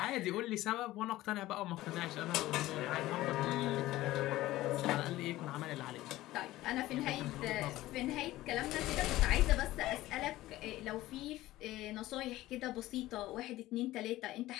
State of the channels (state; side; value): quieter; right; 16.5 dB